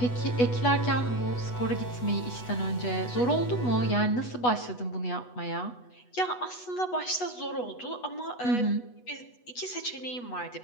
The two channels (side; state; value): right; late; 8.2 ms